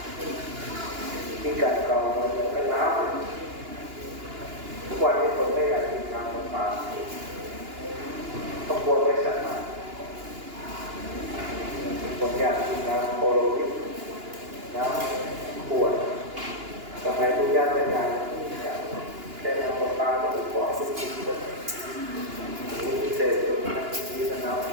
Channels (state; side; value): late; left; 2.9 ms